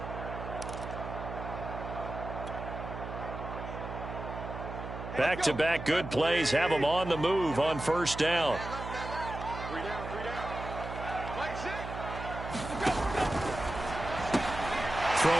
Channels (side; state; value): right; noise; hum, 8 dB below the sound